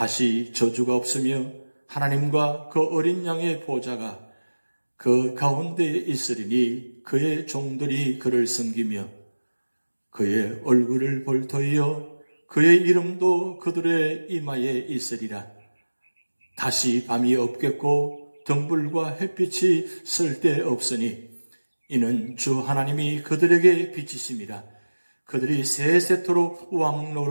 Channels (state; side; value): inverted; both; correlation -1.00